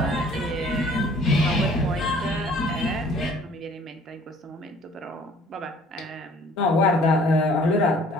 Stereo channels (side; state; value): both; normal; correlation 0.55